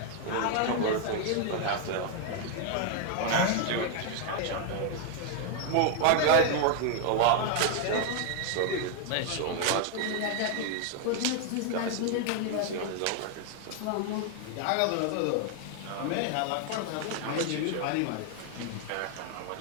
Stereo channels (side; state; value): both; different; correlation 0.01